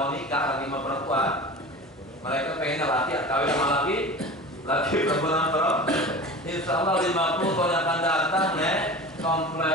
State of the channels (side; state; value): both; normal; correlation 0.34